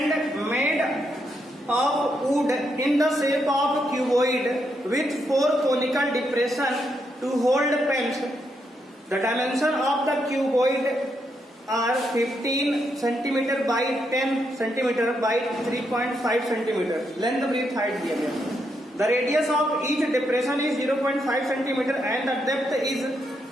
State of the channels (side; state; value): both; normal; correlation 0.79